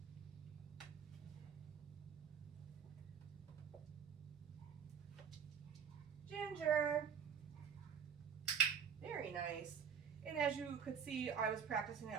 Ginger. Very nice. And as you could see, I was practicing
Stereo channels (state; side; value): quieter; left; 7.3 dB